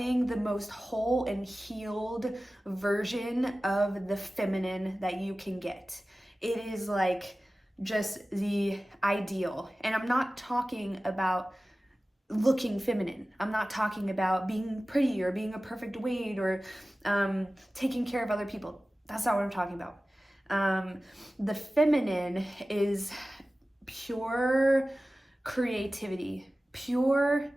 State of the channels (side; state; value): both; normal; correlation 0.96